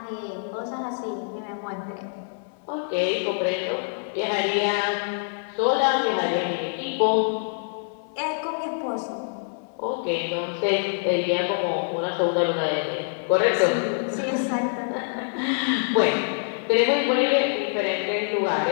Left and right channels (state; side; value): silent; right; digital silence